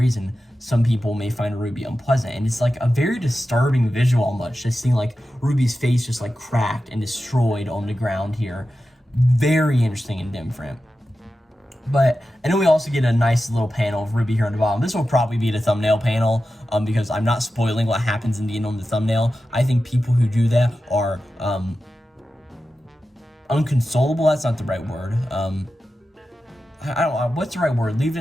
some people may find Ruby unpleasant. And it's like a very disturbing visual almost, just seeing like Ruby's face just like cracked and destroyed on the ground here. Very interesting and different. But I know we also get a nice little panel of Ruby here on the bottom. This will probably be the thumbnail panel because I'm not spoiling what happens in the end on the thumbnail. I think people who do that are unconsolable. That's not the right word. I don't know, what's the right word? Leave it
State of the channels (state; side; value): normal; both; correlation 0.92